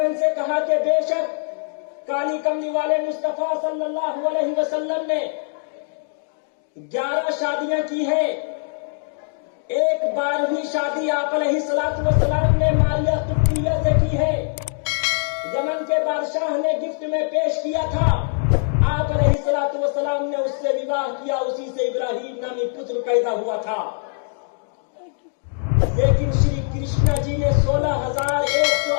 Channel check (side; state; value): right; silent; digital silence